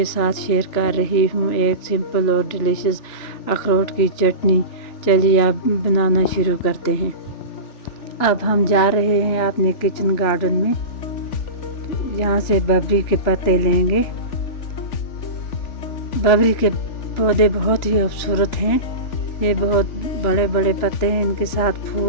साथ शेयर कर रही हूँ एक सिंपल और डिलीशियस अखरोट की चटनी। चलिए आप बनाना शुरू करते हैं। अब हम जा रहे हैं अपने किचन गार्डन में। यहाँ से बबरी के पत्ते लेंगे। बबरी के पौधे बहुत ही खूबसूरत हैं। ये बहुत बड़े बड़े पत्ते हैं, इनके साथ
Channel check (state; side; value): late; right; 3.4 ms